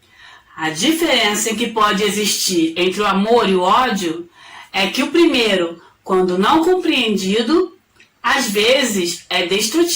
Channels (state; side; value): identical; both; correlation 1.00